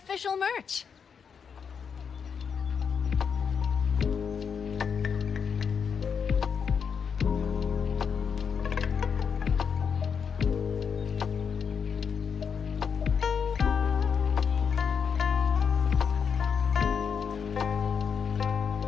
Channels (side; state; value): right; quieter; 6.6 dB